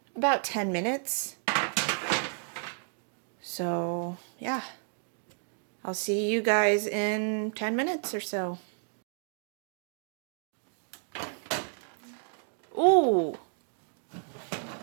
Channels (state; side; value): silent; left; 57 dB below the other